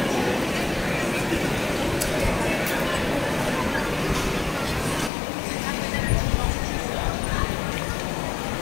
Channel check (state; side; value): drops out; right; at 5.1 s